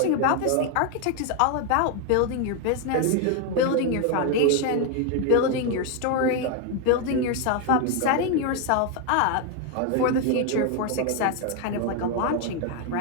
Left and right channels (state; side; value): different; both; correlation 0.01